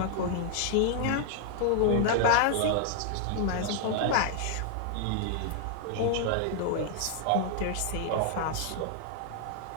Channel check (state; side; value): different; both; correlation -0.01